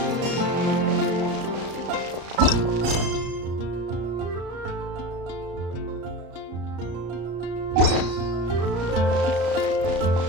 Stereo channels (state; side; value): late; left; 34 ms